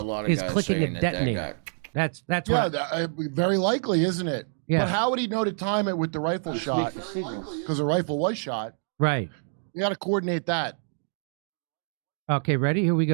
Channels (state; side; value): silent; left; digital silence